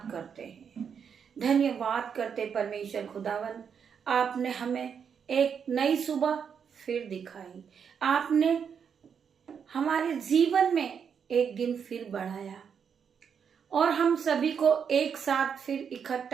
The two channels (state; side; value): quieter; left; 7.1 dB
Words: करते हैं, धन्यवाद करते परमेश्वर खुदावन, आपने हमें एक नई सुबह फिर दिखाई, आपने हमारे जीवन में एक दिन फिर बढ़ाया और हम सभी को एक साथ फिर